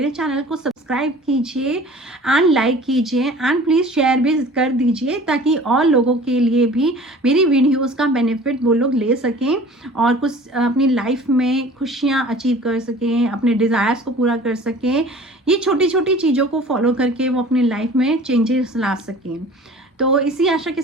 चैनल को सब्सक्राइब कीजिए एंड लाइक कीजिए, एंड प्लीज़ शेयर भी कर दीजिए, ताकि और लोगों के लिए भी मेरी वीडियोस का बेनिफिट वो लोग ले सकें और कुछ अपनी लाइफ में खुशियाँ अचीव कर सकें, अपने डिज़ायर्स को पूरा कर सकें। ये छोटी छोटी चीज़ों को फॉलो करके वो अपनी लाइफ में चेंजेस ला सकें। तो इसी आशा के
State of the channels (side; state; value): both; normal; correlation 0.45